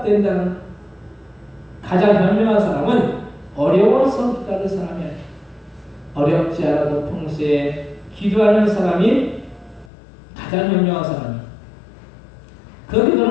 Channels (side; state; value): right; drops out; at 9.9 s